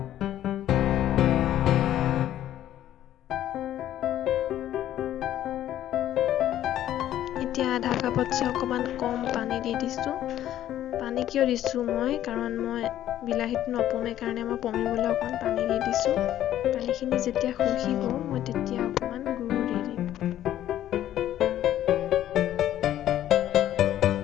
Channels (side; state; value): right; quieter; 12.2 dB